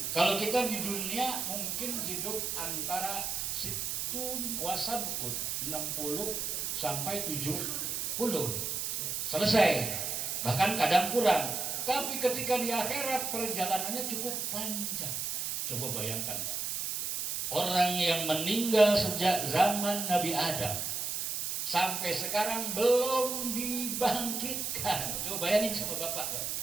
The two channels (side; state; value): right; noise; hiss, 2 dB below the sound